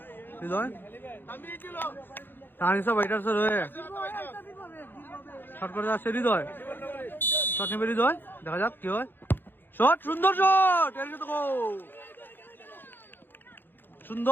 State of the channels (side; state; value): right; late; 0.097 ms